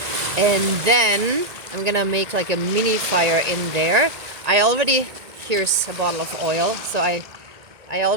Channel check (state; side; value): late; left; 1.9 ms